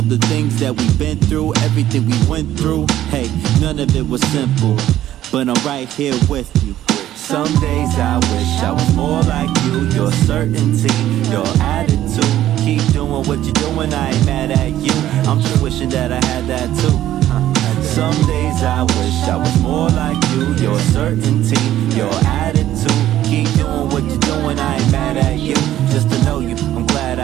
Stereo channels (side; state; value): left; quieter; 12.9 dB